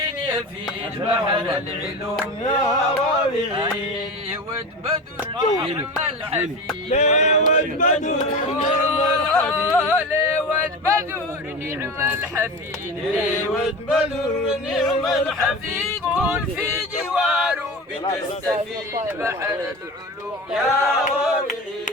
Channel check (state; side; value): normal; both; correlation 0.29